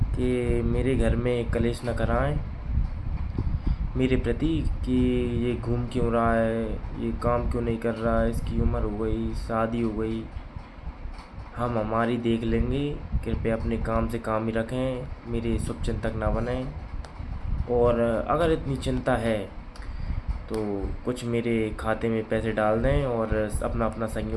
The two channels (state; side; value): identical; both; correlation 1.00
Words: कि मेरे घर में कलेश न कराएं मेरे प्रति, कि ये घूम क्यों रहा है, ये काम क्यों नहीं कर रहा है, इसकी उम्र हो गई, शादी हो गई, हम हमारी देख लेंगे। कृपया अपने काम से काम ही रखें, मेरे शुभचिंतक ना बनें। और अगर इतनी चिंता है तो कुछ मेरे खाते में पैसे डाल दें और अपना अपना